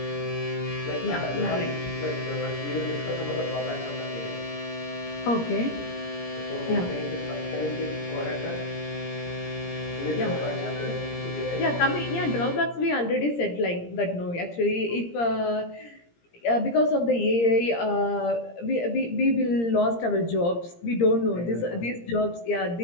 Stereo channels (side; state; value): right; late; 17 ms